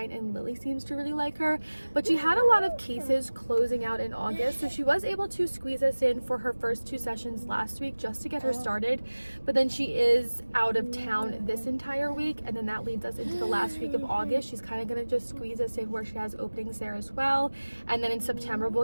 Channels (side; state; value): both; inverted; correlation -1.00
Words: and Lily seems to really like her. But she had a lot of cases closing out in August, so she was able to squeeze us in for her first 2 sessions last week just to get her started. But then she is out of town this entire week, and then that leads us into the last week of August. She's kind of going to just squeeze us in where she has openings there as well, and then in September we'll